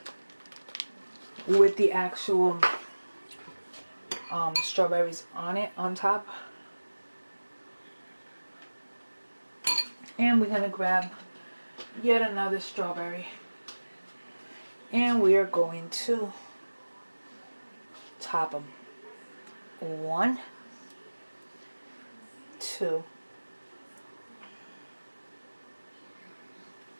With the actual strawberries on top. And we're gonna grab yet another strawberry, and we are going to top them. 1, 2,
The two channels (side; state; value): both; inverted; correlation -1.00